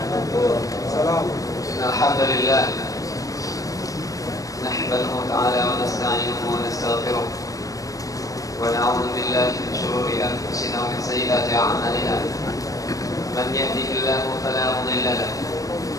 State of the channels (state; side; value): late; right; 0.17 ms